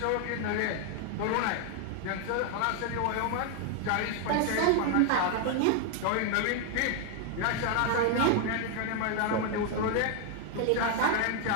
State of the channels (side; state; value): both; different; correlation 0.00